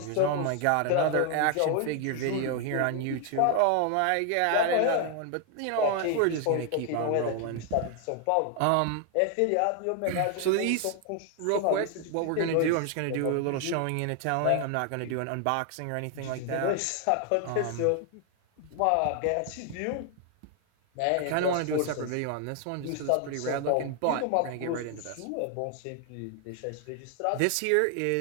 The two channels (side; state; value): both; different; correlation 0.00